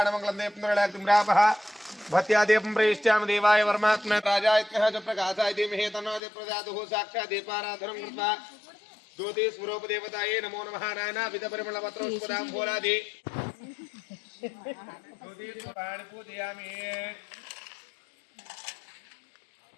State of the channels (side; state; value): right; drops out; at 6.2 s